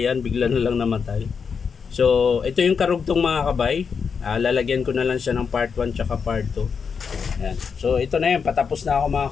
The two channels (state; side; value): quieter; right; 6.0 dB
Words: bigla na lang namatay. So ito yung karugtong mga kabay. Lalagyan ko na lang siya ng part 1 tsaka part 2. Ayan. So ito na yun, patapos na ako mga